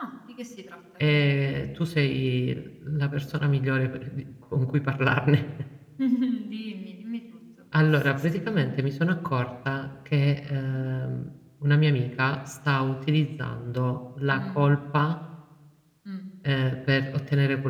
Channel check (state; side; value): identical; both; correlation 1.00